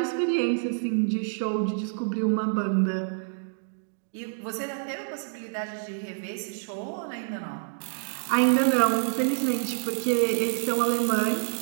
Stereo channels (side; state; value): left; silent; digital silence